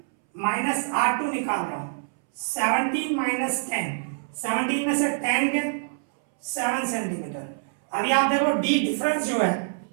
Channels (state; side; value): silent; left; 61 dB below the other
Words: माइनस R2 निकाल रहा हूं, 17 माइनस 10, 17 में से 10 के 7 सेंटीमीटर। अभी आप देखो D डिफरेंस जो है,